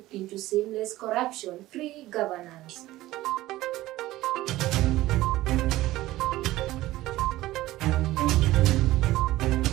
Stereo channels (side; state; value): left; quieter; 16.7 dB